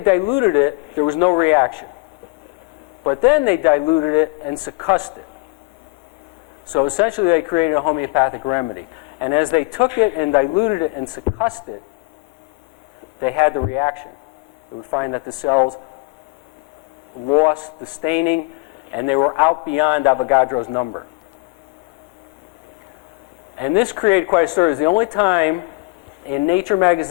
it, there was no reaction. But then they diluted it and succussed it. So essentially they created a homeopathic remedy. And as they took it and diluted it and succussed it, they had the reaction. They would find that the cells lost the staining and they were out beyond Avogadro's number. And this created quite a story. It was the only time in Nature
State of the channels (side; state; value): right; quieter; 26.3 dB